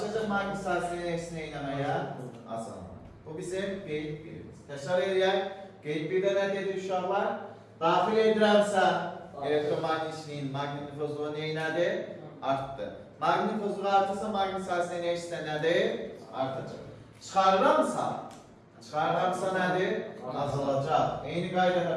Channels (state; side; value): identical; both; correlation 1.00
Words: maqnit sahəsinin eksi neynəməyə? Asılma. Bu bizim qeyd birimiz. Təkrar edək. Qeyd birdə nə dedik uşaqlar? Daxil edirəmsə elektromagnitçiliyin magnitofozluğu neynədir? Artdı. Magnitofozluğu artırsa maqnit sahəsinin eksi nədir? Artacaq. Çıxarıramsa nədir? Azalacaq. Eyni qaydada